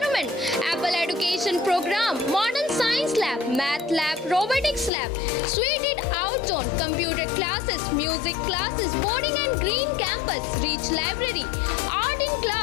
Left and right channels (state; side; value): drops out; right; at 4.9 s